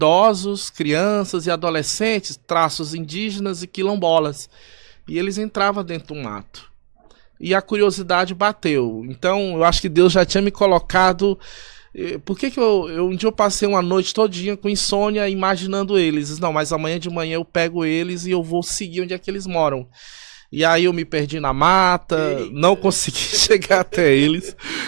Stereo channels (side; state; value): left; silent; digital silence